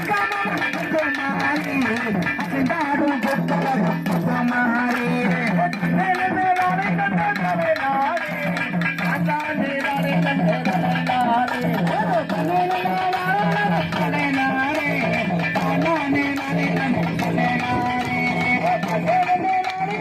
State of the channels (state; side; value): identical; both; correlation 1.00